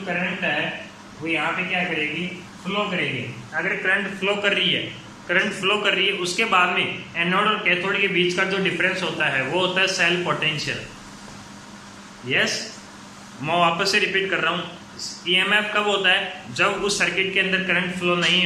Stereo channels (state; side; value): identical; both; correlation 1.00